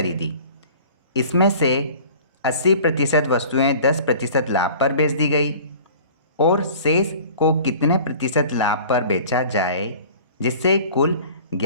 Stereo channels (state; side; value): inverted; both; correlation -0.45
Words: इसमें से 80% वस्तुएं 10% लाभ पर बेच दी गई और शेष को कितने प्रतिशत लाभ पर बेचा जाए जिससे कुल